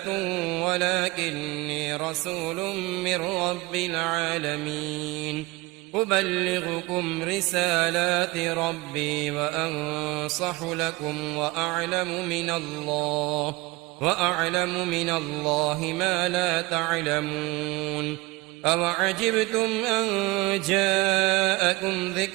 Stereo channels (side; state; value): left; quieter; 22.7 dB